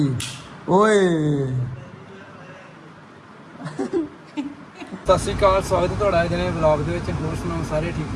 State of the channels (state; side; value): identical; both; correlation 1.00